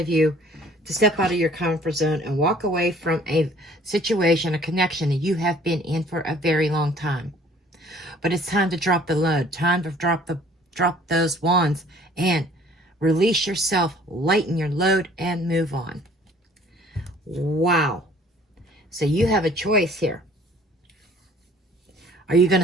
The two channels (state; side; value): normal; both; correlation 0.54